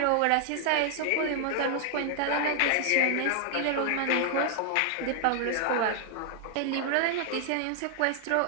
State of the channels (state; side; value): different; both; correlation 0.00